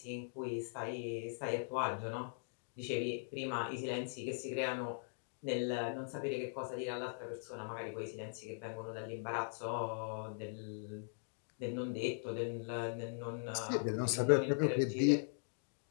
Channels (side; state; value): right; silent; digital silence